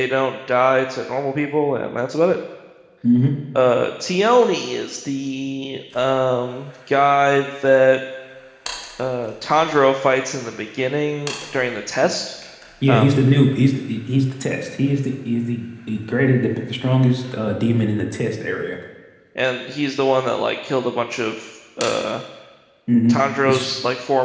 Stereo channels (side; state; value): both; identical; correlation 1.00